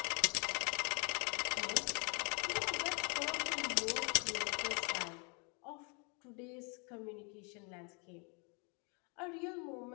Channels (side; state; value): right; quieter; 35.1 dB